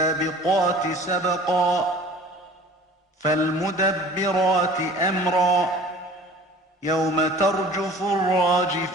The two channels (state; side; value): normal; both; correlation 0.46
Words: سبقا فالمدبرات أمرا يوم ترجف